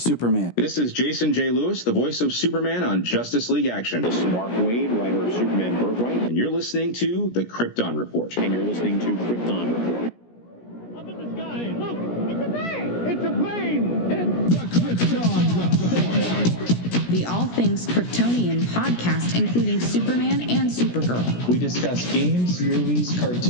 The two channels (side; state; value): right; late; 17 ms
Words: This is Jason J. Lewis, the voice of Superman on Justice League Action. This is Mark Wade, writer of Superman Birthright. And you're listening to The Krypton Report. And you're listening to Krypton Report. Up in the sky, look! it's a bird, It's a plane! It's the Krypton Report! The All Things Kryptonian podcast, including Superman and Supergirl. We discuss games, movies,